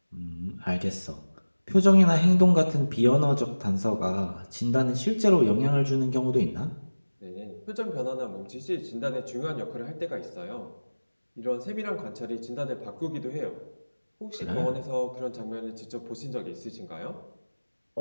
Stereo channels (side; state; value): both; inverted; correlation -1.00